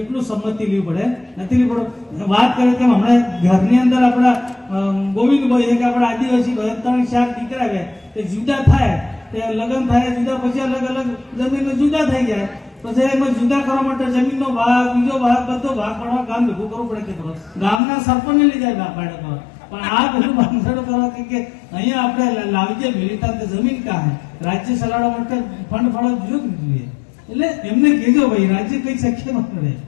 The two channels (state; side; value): drops out; right; at 17.8 s